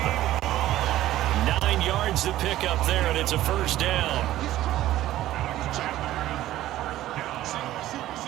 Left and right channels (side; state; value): left; quieter; 14.3 dB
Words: 9 yards to pick up there, and it's a 1st down.